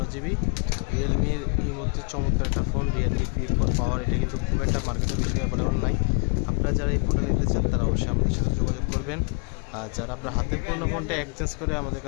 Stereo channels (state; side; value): quieter; right; 39.9 dB